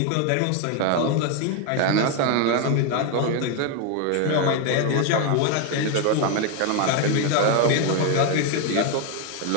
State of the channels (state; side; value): different; both; correlation 0.01